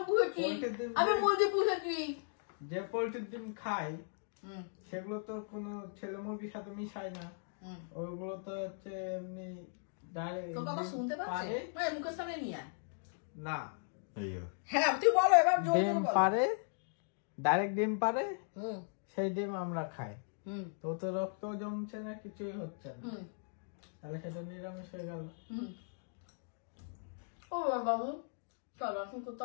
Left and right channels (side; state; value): right; silent; digital silence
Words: পুষেছি, আমি মুরগি পুষেছি। যে পোল্ট্রির ডিম খাই সেগুলো তো কোনো ছেলে মুরগির সাথে মিশায় না, ওইগুলো তো হচ্ছে এমনি ডাইরেক্ট। তোর কথা শুনতে পাচ্ছে, মুখের সামনে নিয়ে আয়। না, হ্যাঁ তুই বলো এবার। ডিম পারে, ডাইরেক্ট ডিম পারে, সেই ডিম আমরা খাই। তো তো রক্ত জমছে না, কিছুই হচ্ছে না, তাহলে সেটা নিরামিষ হয়ে গেল। ও বাবু, চল এখন